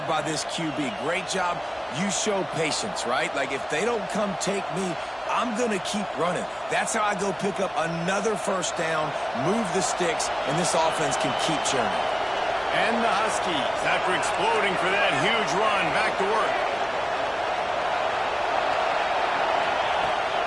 by this QB. Great job. You show patience, right? Like, if they don't come take me, I'm going to keep running. That's how I go pick up another first down, move the sticks, and this offense can keep churning. And the Huskies, after exploding for that huge run, back to work.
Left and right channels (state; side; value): identical; both; correlation 1.00